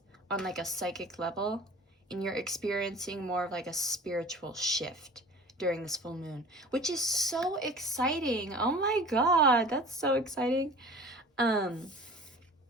on like a psychic level, and you're experiencing more of like a spiritual shift during this full moon, which is so exciting. Oh my god, that's so exciting.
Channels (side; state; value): both; normal; correlation 0.42